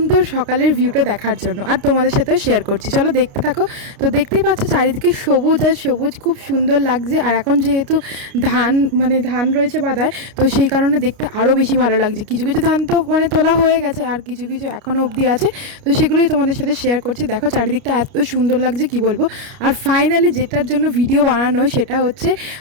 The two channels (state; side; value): late; left; 29 ms